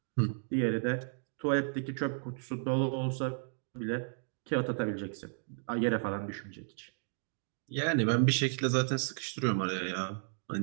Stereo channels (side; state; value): left; silent; digital silence